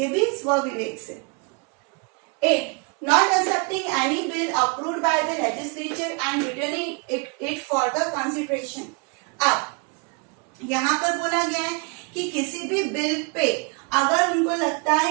भी स्व विवेक से. 8, not accepting any bill approved by the legislature and returning it for the consideration. अब यहाँ पर बोला गया है कि किसी भी बिल पे अगर उनको लगता है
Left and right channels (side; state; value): left; quieter; 33.3 dB